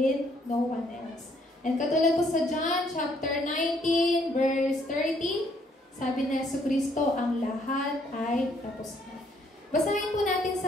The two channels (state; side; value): normal; both; correlation 0.67